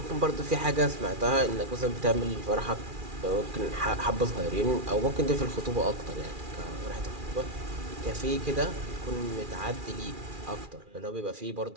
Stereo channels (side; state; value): left; late; 2.4 ms